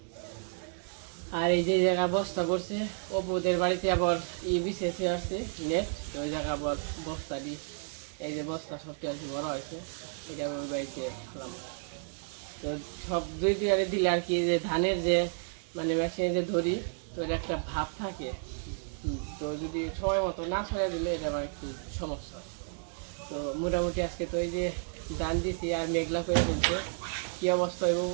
আর এই যে জায়গা বস্তা করছে অপুদের বাড়িতে আবার বিছেছে আসছে নেট, তো ওই জায়গা আবার বস্তা দিই, এই যে বস্তা সবটি আর কি বড় হয়েছে, এটা ওই বাড়িতে ফেলাম। তো সব দুই আরে দিলে আর কি যে ধানের যে মানে মেশিনে যে ধরি, তো এর একটা ভাব থাকে, তো যদি সময় মতো না ছড়িয়ে দিলে এটা আমার একটু সমস্যা হয়। তো মোটামুটি আজকে তো এই যে ধান দিছি আর মেঘলা করে ফেলছে, কি অবস্থা হইব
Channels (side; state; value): left; silent; 57 dB below the other